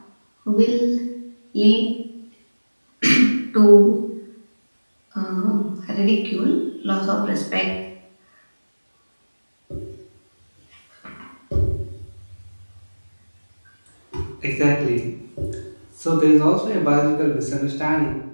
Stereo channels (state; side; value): inverted; both; correlation -1.00